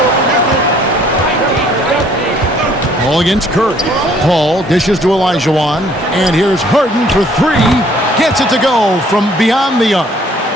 Paul against Curry. Paul dishes to Elijah, and here's Harden for 3. Gets it to go from beyond the arc.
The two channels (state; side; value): normal; both; correlation 0.60